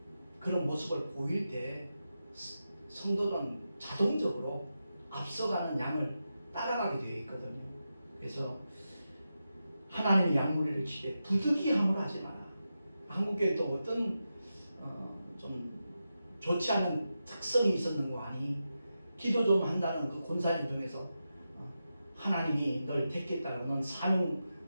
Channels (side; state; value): both; inverted; correlation -0.90